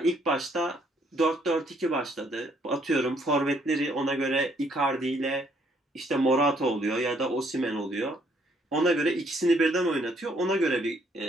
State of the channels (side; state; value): both; normal; correlation 0.68